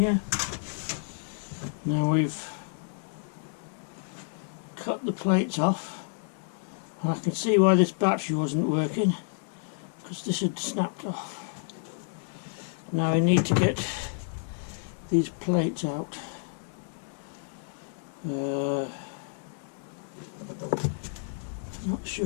Now we've cut the plates off, and I can see why this battery wasn't working, because this had snapped off. Now I need to get these plates out. Not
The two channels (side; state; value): right; silent; digital silence